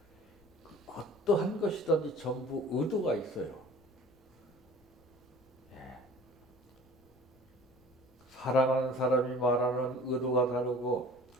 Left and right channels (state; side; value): noise; left; rumble, 29 dB below the sound